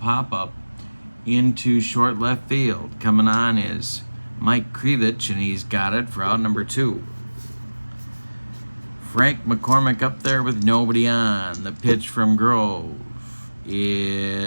into short left field. Coming on is Mike Krivich, and he's got it for out number 2. Frank McCormick up there with nobody on. The pitch from Grove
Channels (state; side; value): inverted; both; correlation -1.00